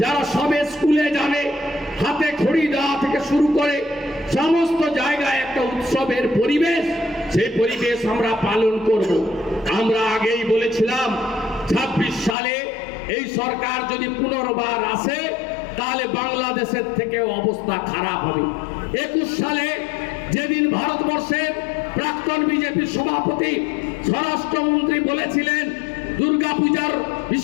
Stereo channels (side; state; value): right; drops out; at 12.4 s